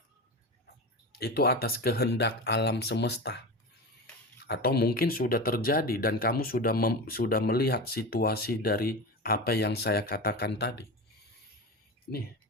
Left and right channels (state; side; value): normal; both; correlation 0.26